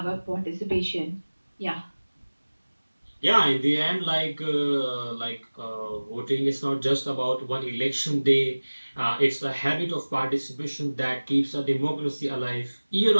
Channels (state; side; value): inverted; both; correlation -1.00